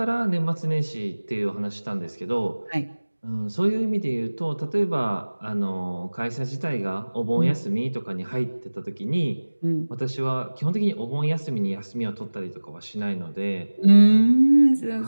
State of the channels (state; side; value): inverted; both; correlation -1.00